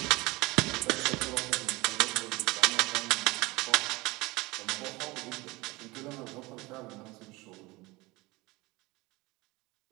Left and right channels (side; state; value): left; quieter; 22.4 dB